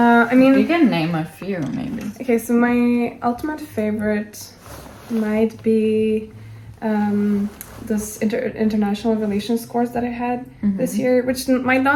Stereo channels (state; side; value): identical; both; correlation 1.00